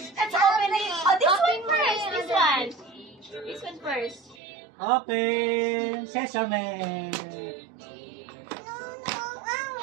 Let's open it. Oh, this one first. This one. This one first. Open. Sesame.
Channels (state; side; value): drops out; left; at 4.4 s